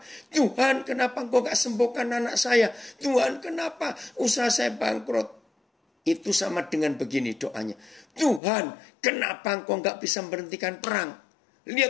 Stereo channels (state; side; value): drops out; right; at 8.4 s